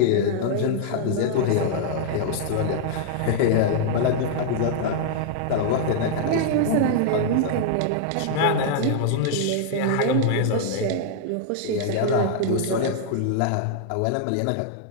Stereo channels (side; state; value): both; different; correlation -0.01